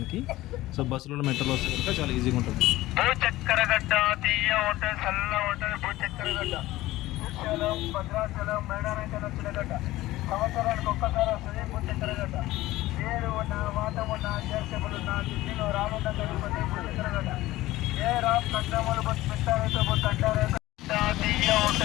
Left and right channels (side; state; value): right; quieter; 17.1 dB